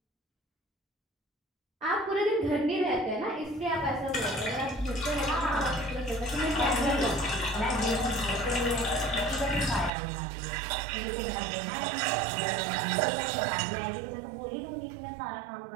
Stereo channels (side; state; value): left; drops out; at 9.9 s